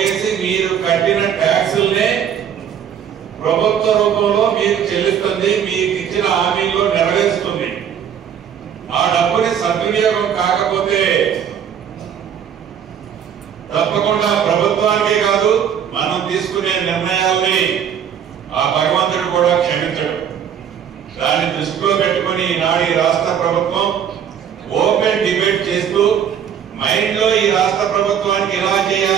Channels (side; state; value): left; quieter; 8.5 dB